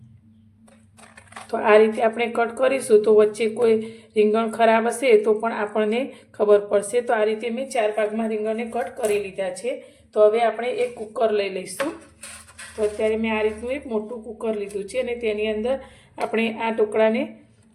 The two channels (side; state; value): both; identical; correlation 1.00